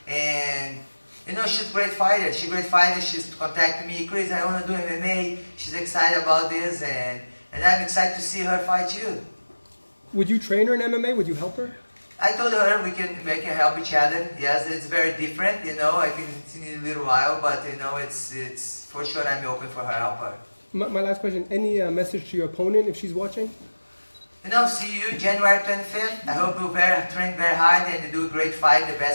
and you know she's a great fighter. She's a great fighter. She's contacted me, Chris. I want to do MMA. She's excited about this, and I'm excited to see her fight you. Would you train her in MMA? Would you help her? I told her we can help each other. Yes, it's very different. You know, I think it's in a little while, but you know, it's for sure. I'm open for her help her. My last question, any message to your opponent if she's watching? You know, see you January 25th. I hope you train very hard and do a great fight, the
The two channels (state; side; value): inverted; both; correlation -1.00